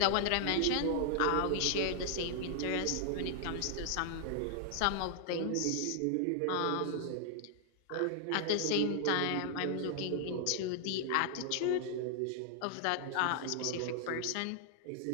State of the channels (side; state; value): both; different; correlation -0.01